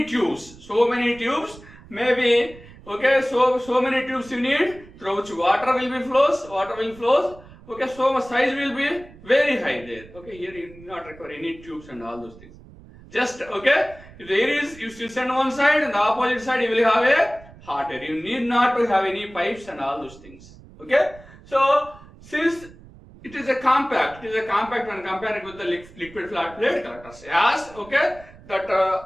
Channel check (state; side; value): noise; right; rumble, 21 dB below the sound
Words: tubes, maybe, okay, so many tubes you need, through which water will flows, okay, so much size will be very high there. Okay, here you do not require any tubes and all those things. Just, okay, if there is, you still send one side and the opposite side you will have a hot air. You need not to have any pipes and all those things. Okay, so since it is a compact when compared with the liquid flat plate collectors. As, okay, that